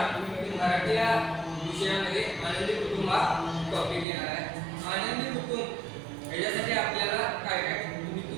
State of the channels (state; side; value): drops out; left; at 4.0 s